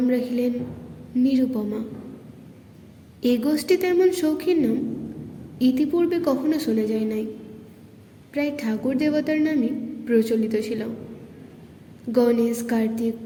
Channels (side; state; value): both; identical; correlation 1.00